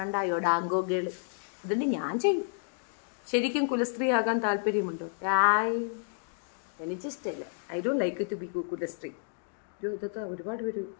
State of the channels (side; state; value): right; silent; digital silence